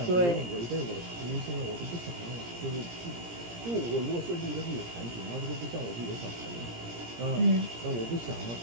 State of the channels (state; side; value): late; left; 17 ms